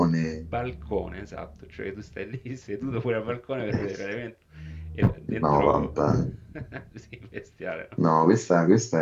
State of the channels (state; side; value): identical; both; correlation 1.00